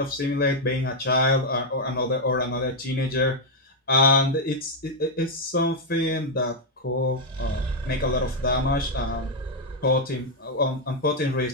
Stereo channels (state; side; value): normal; both; correlation -0.01